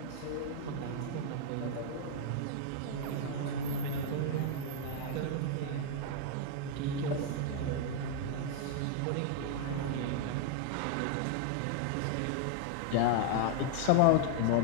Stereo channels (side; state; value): both; different; correlation 0.00